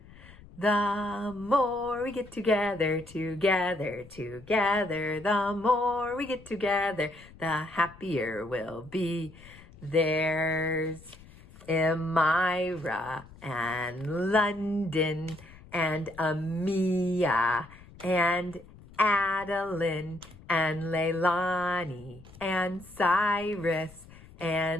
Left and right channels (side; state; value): left; noise; rumble, 21 dB below the sound